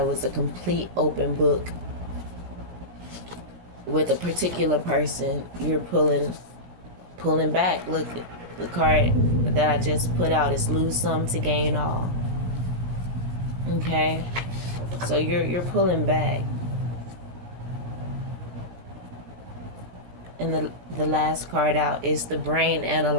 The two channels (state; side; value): late; left; 17 ms